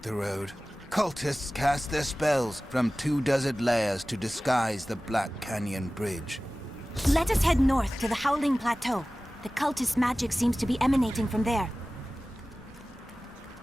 road. Cultists cast their spells from 2 desert layers to disguise the Black Canyon Bridge. Let us head north to the Howling Plateau. The cultist magic seems to be emanating from there.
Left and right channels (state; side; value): normal; both; correlation 0.97